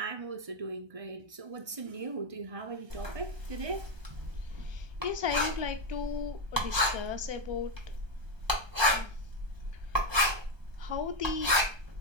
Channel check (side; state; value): left; late; 1.3 ms